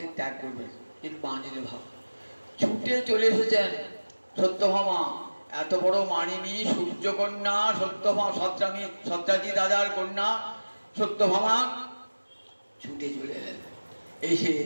ত্যাগ করবে, কিন্তু মানিলে ভাব। ছুটে চলে এসেছেন সত্যভামা, এত বড় মানিনী সূর্যকন্যা সত্যভামা, সত্রাজিৎ রাজার কন্যা সত্যভামা ছুটে চলে এলেন, এসে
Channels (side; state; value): both; inverted; correlation -1.00